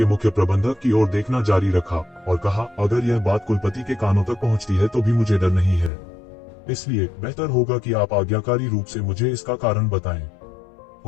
मुख्य प्रबंधक की ओर देखना जारी रखा और कहा, अगर यह बात कुलपति के कानों तक पहुंचती है तो भी मुझे डर नहीं है। इसलिए बेहतर होगा कि आप आज्ञाकारी रूप से मुझे इसका कारण बताएं।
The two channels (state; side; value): drops out; right; at 5.9 s